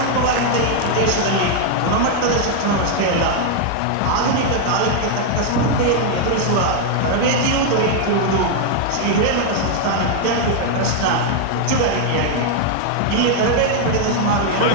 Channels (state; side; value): different; both; correlation 0.00